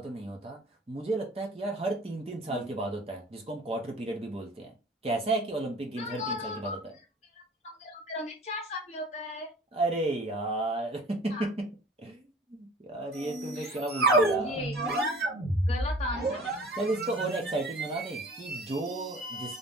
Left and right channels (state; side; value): normal; both; correlation 0.46